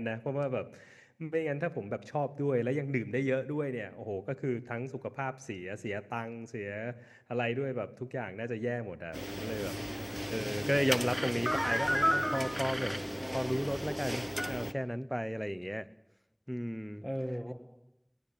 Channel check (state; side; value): identical; both; correlation 1.00